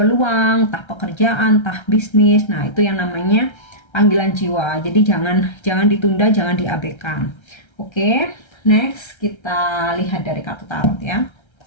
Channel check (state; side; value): late; right; 1.3 ms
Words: entah pekerjaan, entah bisnis. Nah, itu yang namanya panggilan jiwa. Jadi jangan ditunda, jangan diabaikan. Oke, next kita lihat dari kartu tarot ya.